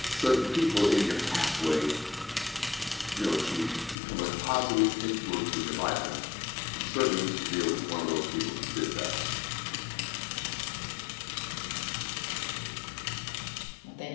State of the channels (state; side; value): drops out; right; at 4.0 s